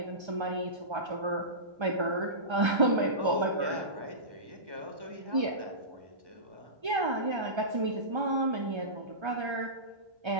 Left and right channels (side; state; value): left; late; 1.3 ms